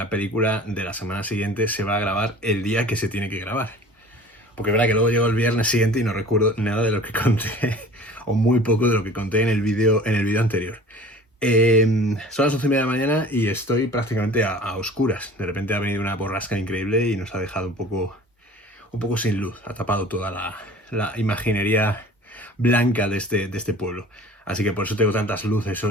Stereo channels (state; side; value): normal; both; correlation 0.45